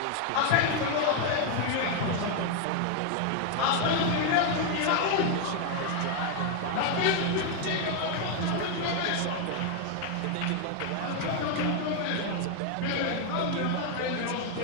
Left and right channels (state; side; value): different; both; correlation 0.01